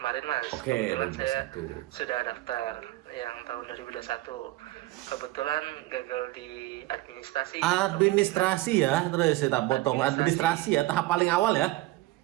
Mas. Oke, Kebetulan saya 2021. sudah daftar yang tahun 2021. Kebetulan gagal di administrasi. Administrasi ya, terus saya tak potong. Administrasi ya, tahap paling awal ya.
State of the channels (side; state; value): left; quieter; 18.2 dB